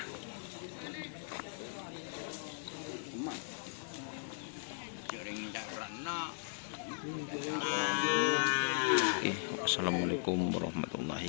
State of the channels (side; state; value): right; silent; digital silence